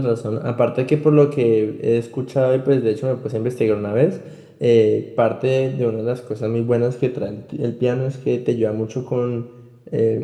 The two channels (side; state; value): both; identical; correlation 1.00